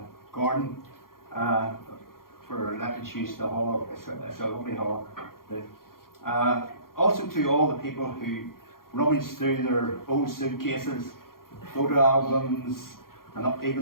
Gordon for letting us use the hall. It's a lovely hall. Also to all the people who rummaged through their old suitcases, photo albums, and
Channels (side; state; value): right; late; 0.92 ms